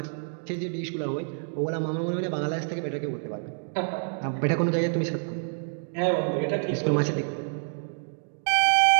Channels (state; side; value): silent; left; digital silence